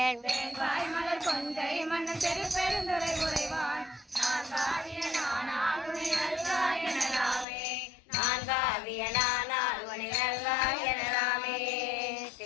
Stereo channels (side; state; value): right; drops out; at 7.5 s